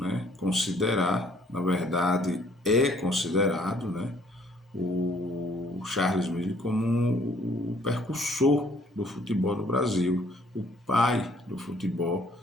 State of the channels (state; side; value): normal; both; correlation 0.61